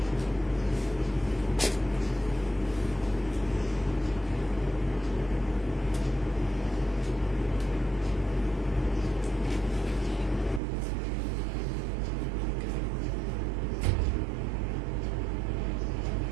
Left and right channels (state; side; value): drops out; left; at 10.6 s